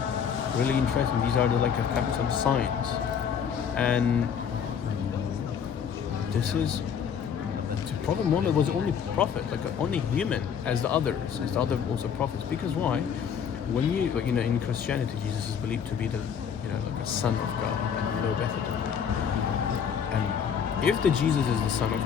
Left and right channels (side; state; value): right; quieter; 7.5 dB